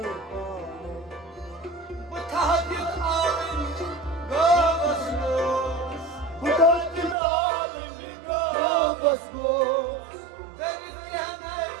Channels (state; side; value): drops out; left; at 7.2 s